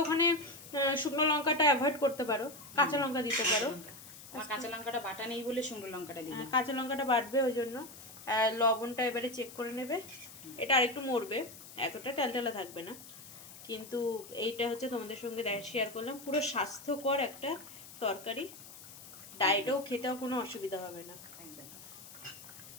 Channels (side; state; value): left; noise; hiss, 16 dB below the sound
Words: ওখানে শুকনো লঙ্কাটা অ্যাভয়েড করতে পারো, কাঁচা লঙ্কা দিতে পারো। আমার কাঁচা লঙ্কাটা বাটা নেই বলে শুকনো লঙ্কাটা দিই। কাঁচা লঙ্কাটা বাটবে, ওই জন্য লবণটা এবারে চেক করে নেবে। এটা আরেকটু মরবে, এতটা টালটালা থাকবে না। কিন্তু এইটা হচ্ছে তোমাদের সঙ্গে শেয়ার করলাম পুরো স্বাস্থ্যকর একটা তরকারি। ডায়েটেও খেতেও কোনো অসুবিধা হবে না।